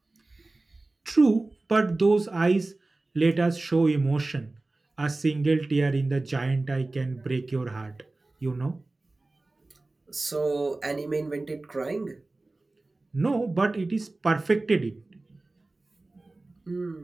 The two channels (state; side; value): quieter; left; 3.1 dB